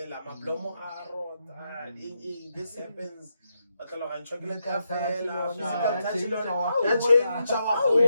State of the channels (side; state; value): both; inverted; correlation -0.83